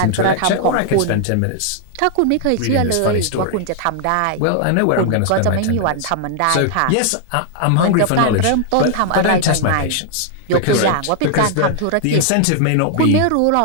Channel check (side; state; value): both; different; correlation 0.00